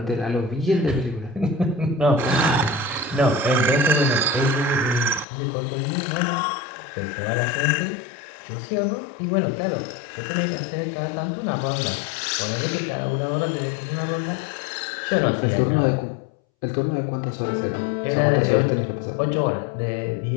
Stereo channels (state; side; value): drops out; right; at 5.2 s